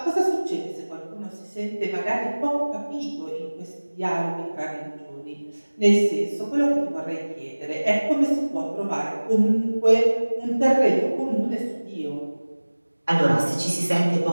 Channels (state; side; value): inverted; both; correlation -1.00